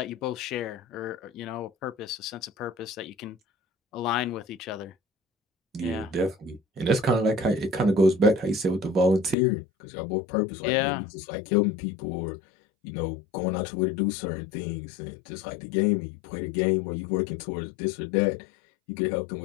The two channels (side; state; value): right; drops out; at 9.3 s